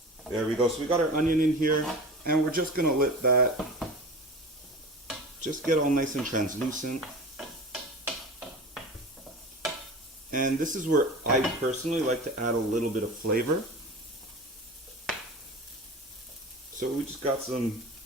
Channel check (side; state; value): both; normal; correlation 0.34